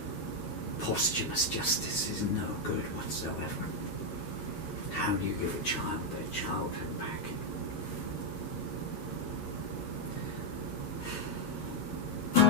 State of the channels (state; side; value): late; right; 9.7 ms